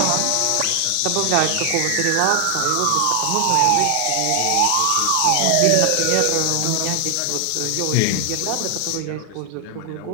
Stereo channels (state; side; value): different; both; correlation 0.00